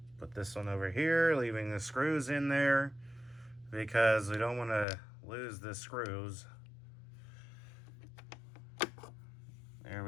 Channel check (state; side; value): drops out; right; at 4.9 s